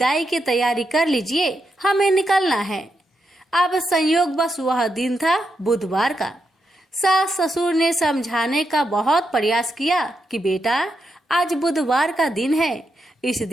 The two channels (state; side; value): normal; both; correlation 0.84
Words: की तैयारी कर लीजिए, हमें निकलना है। अब संयोग बस वह दिन था बुधवार का। सास ससुर ने समझाने का बहुत प्रयास किया कि बेटा, आज बुधवार का दिन है, इस